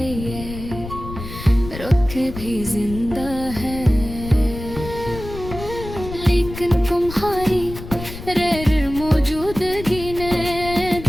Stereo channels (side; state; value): left; noise; rumble, 11 dB below the sound